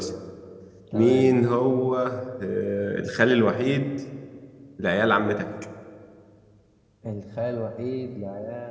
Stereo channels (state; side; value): identical; both; correlation 1.00